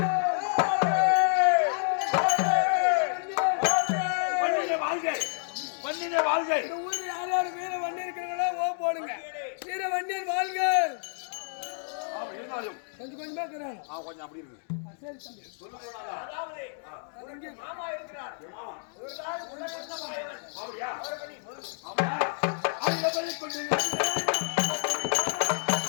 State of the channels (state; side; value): silent; right; 58 dB below the other